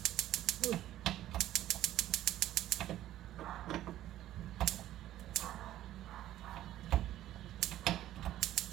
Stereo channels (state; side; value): quieter; left; 13.3 dB